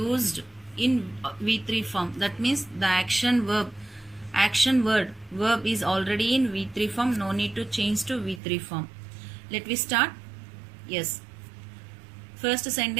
in V3 form. That means the action word is already in V3 form. No need to change to V3 form. Let me start. Yes. First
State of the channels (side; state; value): left; drops out; at 8.4 s